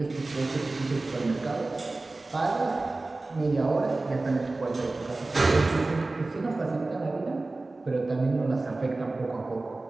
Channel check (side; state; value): left; quieter; 3.2 dB